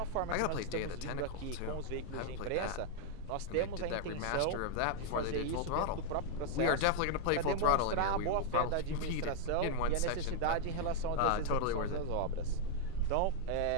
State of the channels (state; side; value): different; both; correlation 0.00